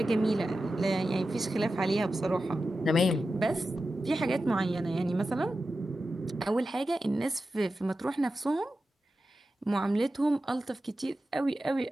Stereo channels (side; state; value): both; normal; correlation 0.92